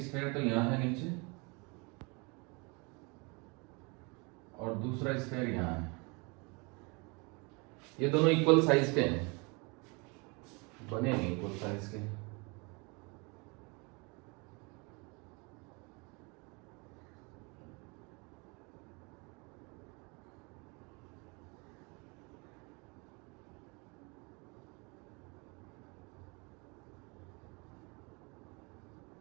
स्फेयर तो यहां है नीचे और दूसरा स्फेयर यहां है। ये दोनों इक्वल साइज के हैं, बने नहीं इक्वल साइज के।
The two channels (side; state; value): left; quieter; 29.6 dB